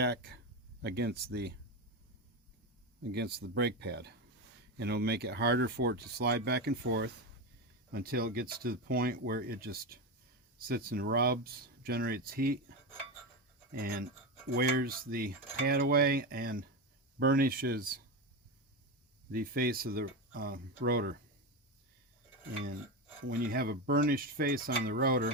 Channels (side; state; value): both; normal; correlation 0.16